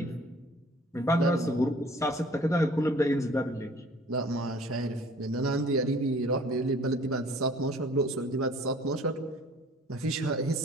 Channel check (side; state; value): both; normal; correlation 0.52